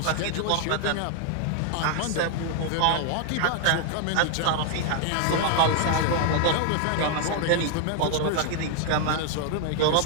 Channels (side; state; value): both; different; correlation 0.00